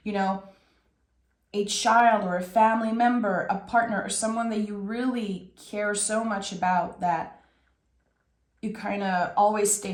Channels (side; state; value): both; identical; correlation 1.00